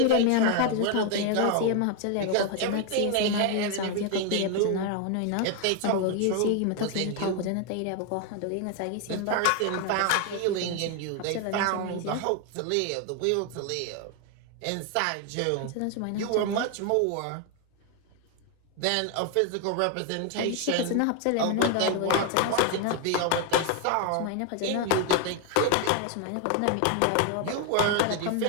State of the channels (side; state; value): both; different; correlation 0.01